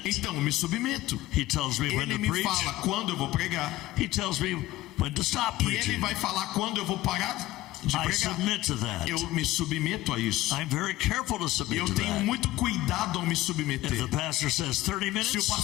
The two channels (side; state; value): right; quieter; 16.5 dB